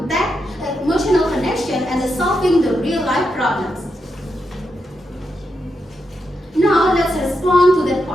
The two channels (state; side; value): normal; both; correlation 0.84